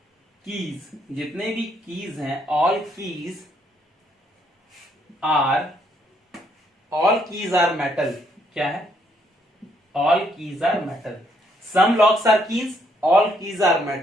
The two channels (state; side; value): normal; both; correlation 0.71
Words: कीज, जितने भी कीज हैं, ऑल कीज आर मेटल, क्या है, all keys are metal, some locks are keys, all keys are